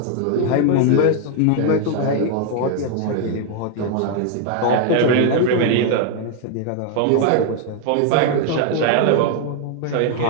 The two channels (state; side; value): different; both; correlation 0.00